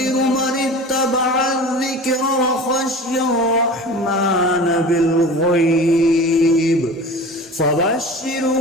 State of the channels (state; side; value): normal; both; correlation 0.36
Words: من اتبع الذكر وخشي الرحمن بالغيب